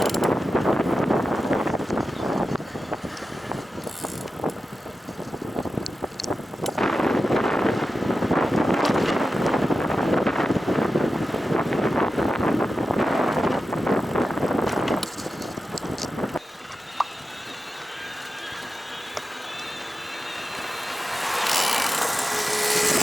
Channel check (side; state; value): both; normal; correlation 0.92